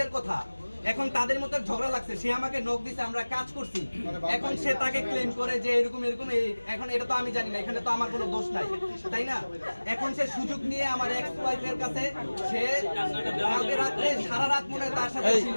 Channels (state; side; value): inverted; both; correlation -1.00